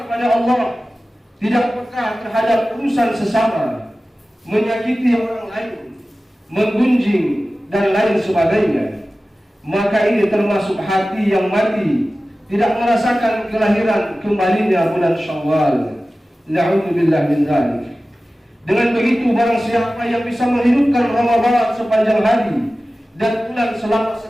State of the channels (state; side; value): normal; both; correlation 0.96